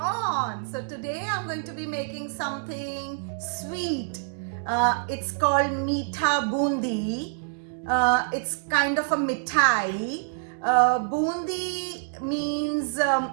So today I'm going to be making something sweet. It's called Meetha Bundi. It's kind of a mithai. Bundi means,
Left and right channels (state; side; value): silent; left; digital silence